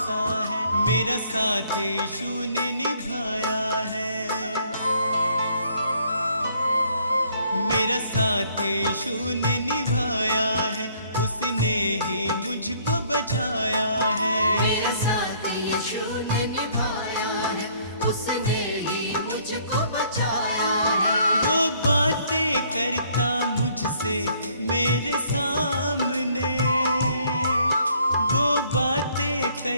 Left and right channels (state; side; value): inverted; both; correlation -0.63